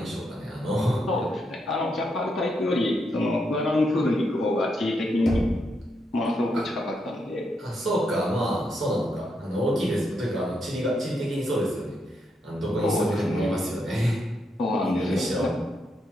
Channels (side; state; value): both; normal; correlation 0.80